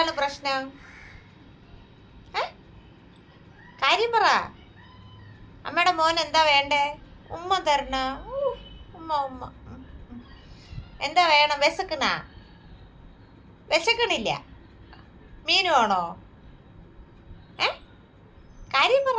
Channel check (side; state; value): both; identical; correlation 1.00